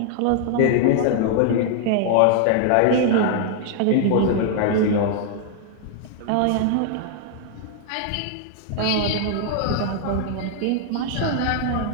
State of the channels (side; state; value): both; different; correlation -0.01